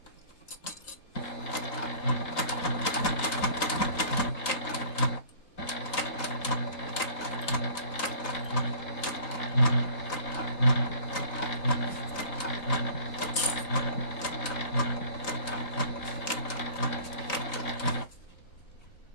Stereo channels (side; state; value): right; late; 3.9 ms